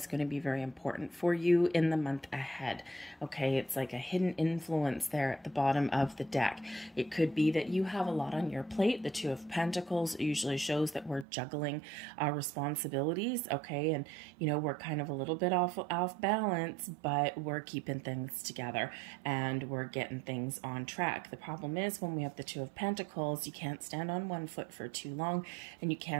going to be very important for you in the month ahead. Okay, it's like a hidden influence there at the bottom of the deck. It could be that you have a lot on your plate. The Two of Pentacles usually shows that we're juggling our responsibilities. Okay, and we're kind of a little bit off balance, but we're keeping things together and we're getting things on track. The problem is when we have the Two of Pentacles, you can't stand on one foot for too long and you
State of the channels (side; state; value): left; drops out; at 11.2 s